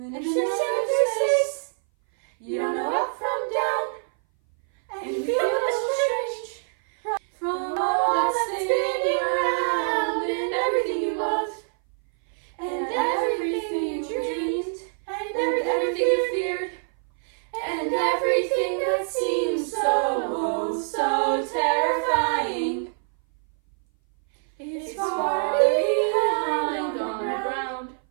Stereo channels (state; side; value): silent; left; 59 dB below the other